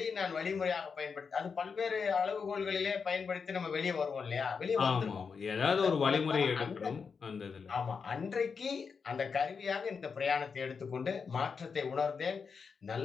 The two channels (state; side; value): quieter; right; 5.6 dB